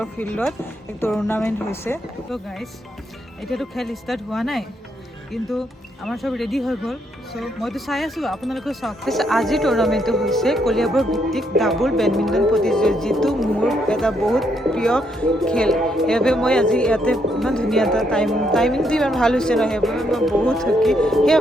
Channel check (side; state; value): both; normal; correlation 0.75